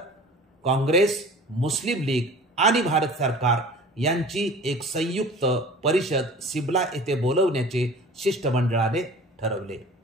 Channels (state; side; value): normal; both; correlation 0.42